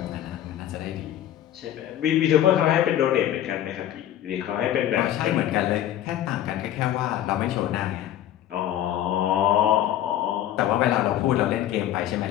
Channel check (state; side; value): quieter; right; 11.9 dB